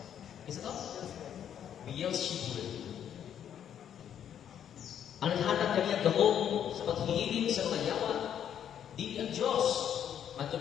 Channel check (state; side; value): quieter; right; 9.4 dB